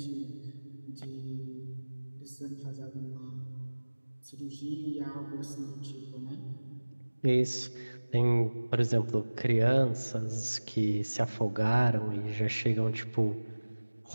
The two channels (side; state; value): both; inverted; correlation -1.00